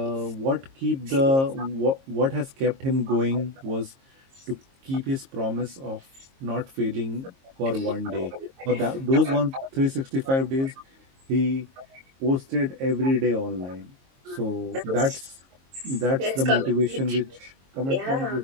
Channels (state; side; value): late; left; 22 ms